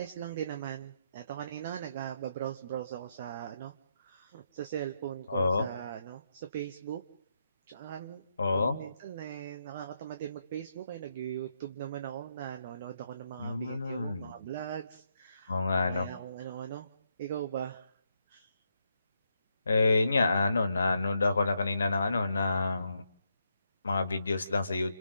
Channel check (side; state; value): both; inverted; correlation -0.80